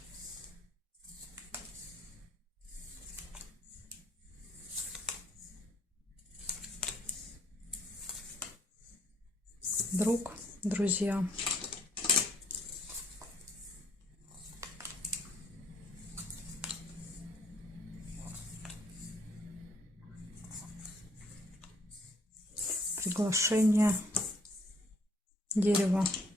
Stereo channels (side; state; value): both; normal; correlation 0.65